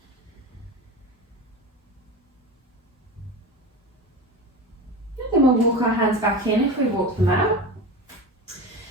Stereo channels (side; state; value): both; normal; correlation 0.28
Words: And then we'll walk our hands back in if we walk them out.